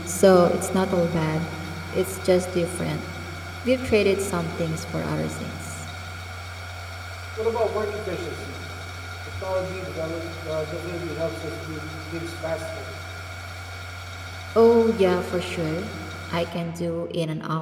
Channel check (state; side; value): identical; both; correlation 1.00